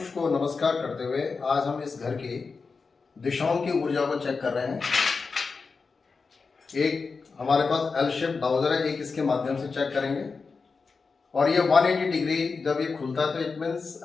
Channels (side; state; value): right; quieter; 4.7 dB